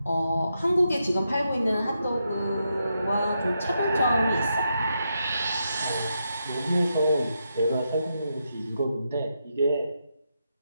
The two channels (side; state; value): both; inverted; correlation -0.83